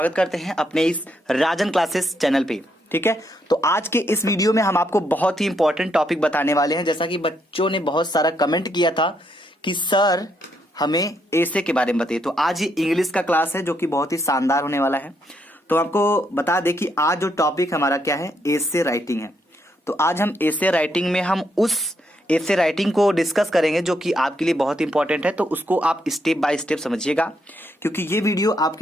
करते हैं अपने इस राजन क्लासेस चैनल पे। ठीक है, तो आज के इस वीडियो में हम आपको बहुत ही इंपॉर्टेंट टॉपिक बताने वाले हैं। जैसा कि बच्चों ने बहुत सारा कमेंट किया था कि सर हमें ऐसे के बारे में बताइए, तो आज ये इंग्लिश का क्लास है जो कि बहुत ही शानदार होने वाला है। तो आपको बता दें कि आज जो टॉपिक हमारा क्या है, एसे राइटिंग है। तो आज हम एसे राइटिंग में हम उस एसे राइटिंग को डिस्कस करेंगे जो कि आपके लिए बहुत इंपॉर्टेंट है। तो उसको आप स्टेप बाय स्टेप समझिएगा, क्योंकि ये वीडियो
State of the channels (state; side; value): normal; both; correlation 0.76